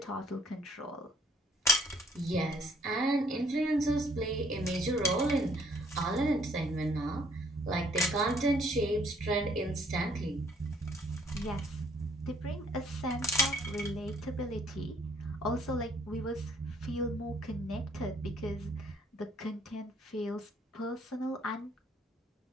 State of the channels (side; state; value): both; normal; correlation 0.62